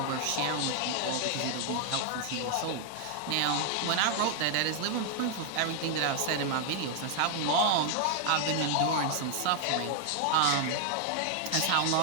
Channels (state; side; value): different; both; correlation 0.00